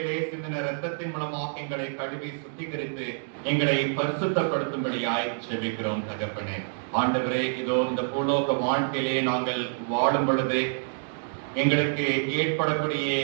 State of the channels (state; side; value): silent; left; digital silence